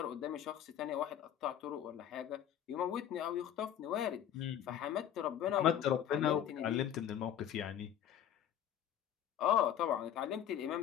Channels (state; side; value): quieter; right; 10.1 dB